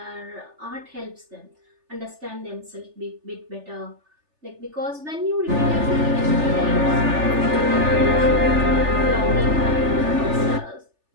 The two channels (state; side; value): late; left; 3.4 ms